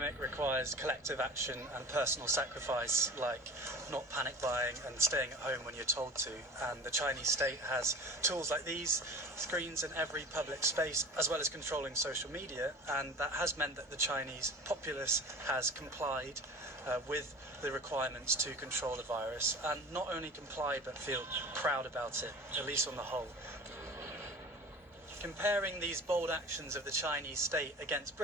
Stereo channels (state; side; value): normal; both; correlation 0.38